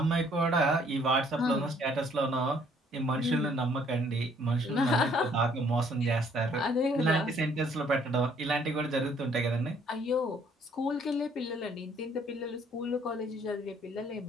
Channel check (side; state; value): both; normal; correlation 0.62